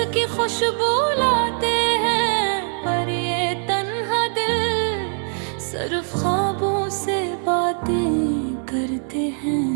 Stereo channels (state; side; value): silent; left; 56 dB below the other